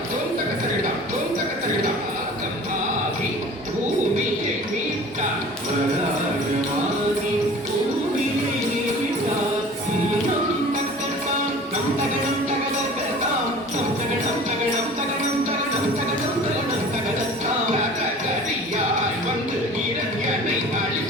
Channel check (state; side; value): normal; both; correlation 0.43